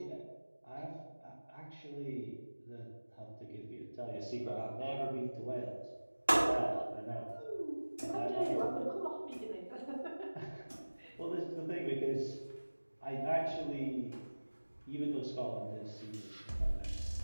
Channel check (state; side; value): inverted; both; correlation -1.00